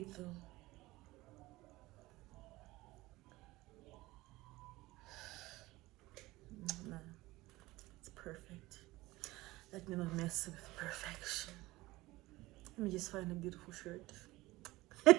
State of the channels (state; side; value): quieter; left; 19.4 dB